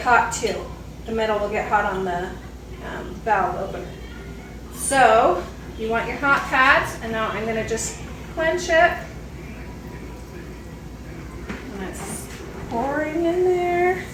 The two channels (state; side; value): identical; both; correlation 1.00